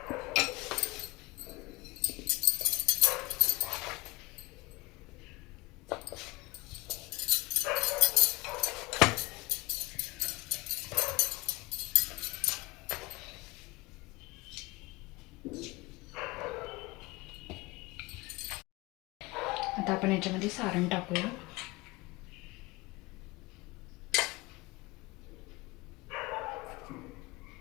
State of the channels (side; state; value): right; quieter; 22.6 dB